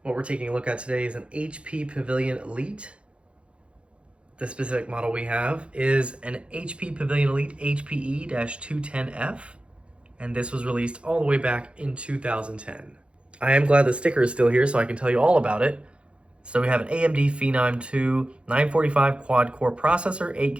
What we're taking a look at today is an HP Pavilion Elite. The specific model we have is an HP Pavilion Elite HPE-210f, and this was released all the way back in 2010. I am glad the sticker is still here so I can tell you all about it. So we have an AMD Phenom II 945 quad-core processor, 8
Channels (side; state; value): left; late; 0.059 ms